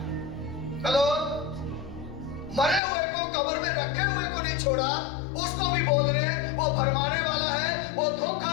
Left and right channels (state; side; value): drops out; right; at 2.8 s